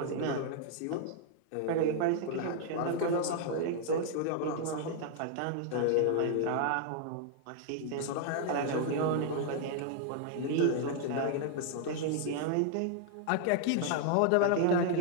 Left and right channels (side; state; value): both; different; correlation 0.00